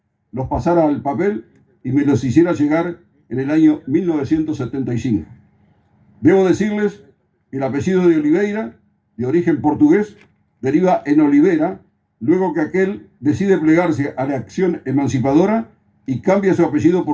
los pasara al papel y me los hiciera llegar en el año 1975. Debo decirles que el apellido de Oliveira, de origen portugués, deriva en Olivera, luego que aquel decide plegarse a la acción emancipadora y cambia su apellido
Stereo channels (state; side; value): identical; both; correlation 1.00